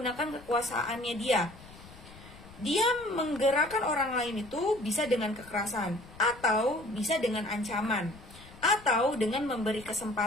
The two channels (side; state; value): left; noise; rumble, 20 dB below the sound